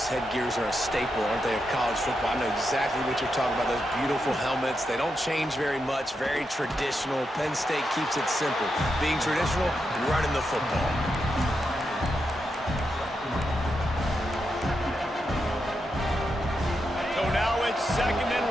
headgears are a staple, aren't they, of college football? I know exactly what you're talking about, those beautiful helmets. They don't change very much, very traditional. Penn State keeps it simple. Being traditional, running the football. So now it's 2nd and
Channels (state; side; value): normal; both; correlation 0.85